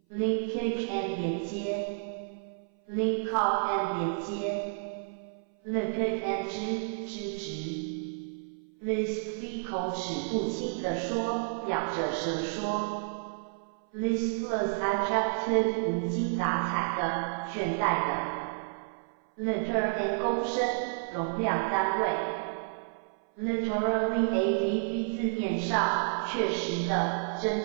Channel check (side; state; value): left; silent; 57 dB below the other